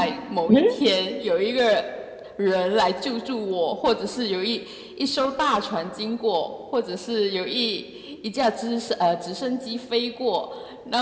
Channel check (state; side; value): identical; both; correlation 1.00